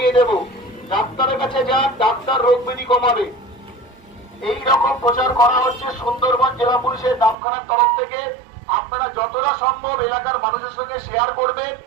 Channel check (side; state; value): left; drops out; at 7.4 s